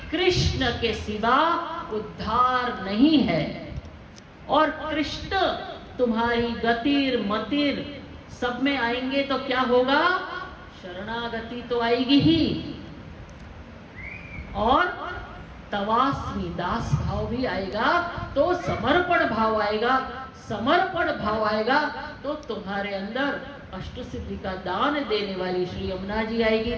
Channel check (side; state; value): both; identical; correlation 1.00